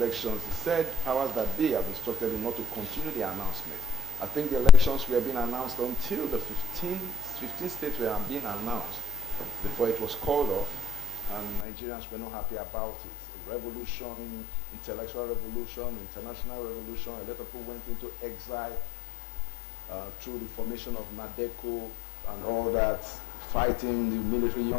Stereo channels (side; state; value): right; drops out; at 11.7 s